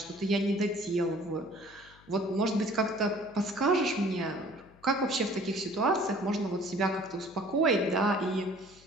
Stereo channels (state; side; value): noise; left; hum, 26 dB below the sound